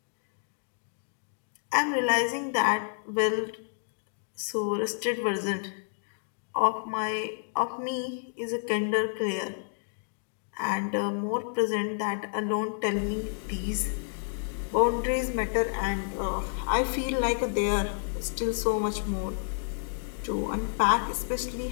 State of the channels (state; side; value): silent; right; digital silence